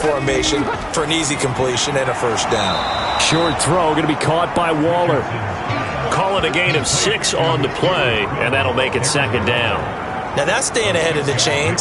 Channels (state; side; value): identical; both; correlation 1.00